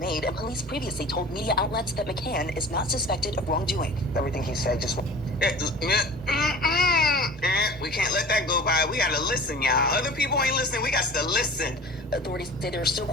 and police previously told media outlets that McCann is not suspected of wrongdoing. Everything he said just... We can't let that go by. We gotta listen, y'all. Other people ain't listening. We got to listen. Authorities say they're still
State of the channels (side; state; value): both; normal; correlation 0.40